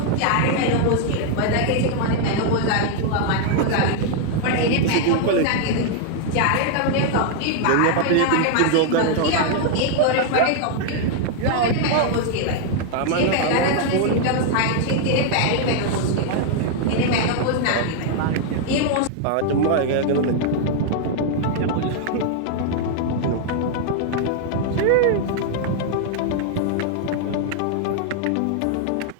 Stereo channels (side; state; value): both; different; correlation 0.00